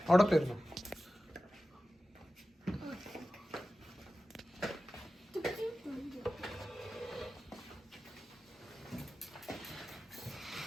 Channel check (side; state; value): both; normal; correlation 0.94